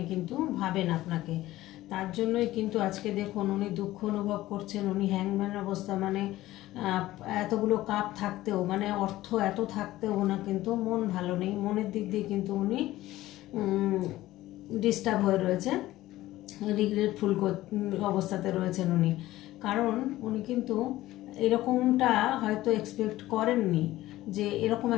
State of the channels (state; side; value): quieter; right; 16.1 dB